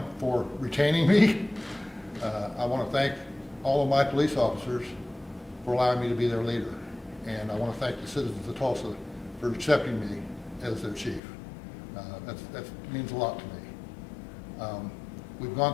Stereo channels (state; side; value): drops out; right; at 11.2 s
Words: for retaining me. I want to thank all of my police officers for allowing me to be their leader. And I want to thank the citizens of Tulsa for accepting me as their chief. That means a lot to me. We've